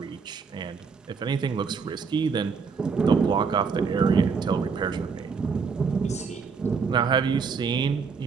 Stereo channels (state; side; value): quieter; left; 5.4 dB